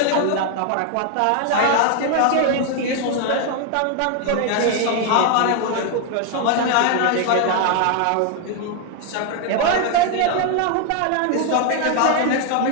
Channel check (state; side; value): different; both; correlation 0.00